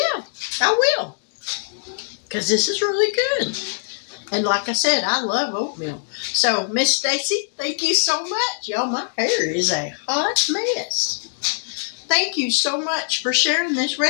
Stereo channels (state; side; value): silent; right; digital silence